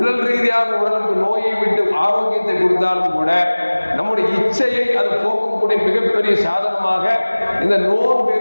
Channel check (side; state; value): both; inverted; correlation -1.00